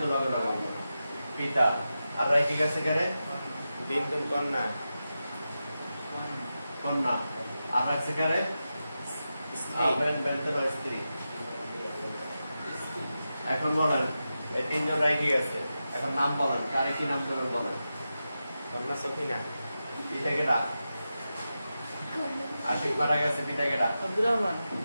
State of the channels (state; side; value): inverted; both; correlation -0.91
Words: লগে লগে পিতা। আর রাইখে গেছে কারে? বিনতুল কন্যা। কন্যা। আর রাখছে কারে? স্ত্রী। এখন বলেন এই 3 জন রাইখে গেছে, এখন নাম বলেন, কারে কি নাম দেবেন বলেন? কন্যা সফিনা। পিতা কেডা? আশিক মারা গেছে, পিতা কেডা? আব্দুর রহমান।